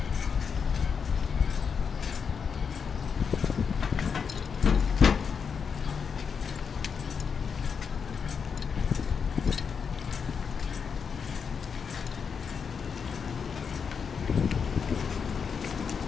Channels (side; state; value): right; quieter; 6.2 dB